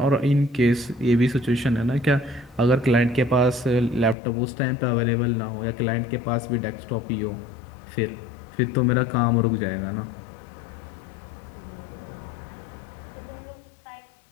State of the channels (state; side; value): drops out; right; at 4.2 s